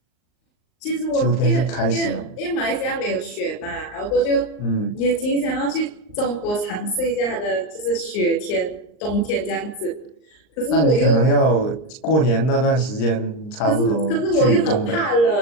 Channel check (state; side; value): late; right; 39 ms